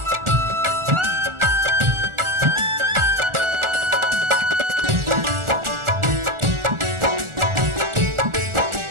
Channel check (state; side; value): late; left; 1.4 ms